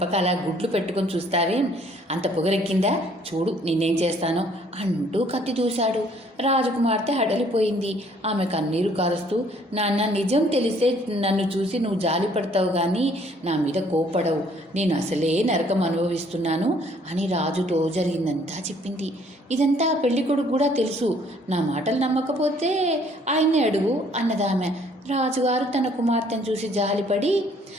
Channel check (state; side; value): normal; both; correlation 0.61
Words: అలా గుడ్లు పెట్టుకొని చూస్తావేం, అంత పొగరెక్కిందా, చూడు నిన్నేం చేస్తానో అంటూ కత్తి దూశాడు. రాజకుమార్తె హడలిపోయింది. ఆమె కన్నీరు కారుస్తూ, నాన్న నీ నిజం తెలిస్తే నన్ను చూసి నువ్వు జాలి పడతావు కానీ నా మీద కోప్పడవు. నేను అసలే నరకం అనుభవిస్తున్నాను అని రాజుతో జరిగిందంతా చెప్పింది. ఇదంతా పెళ్ళికొడుకు కూడా తెలుసు. నా మాటలు నమ్మకపోతే ఆయన్నే అడుగు అన్నదామె. రాజుగారు తన కుమార్తెను చూసి జాలిపడి,